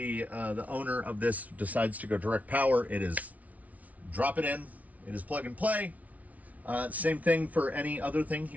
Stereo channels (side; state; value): left; late; 0.070 ms